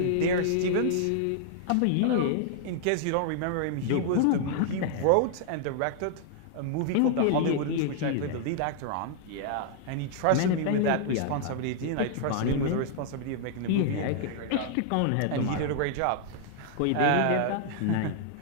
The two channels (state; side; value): different; both; correlation -0.01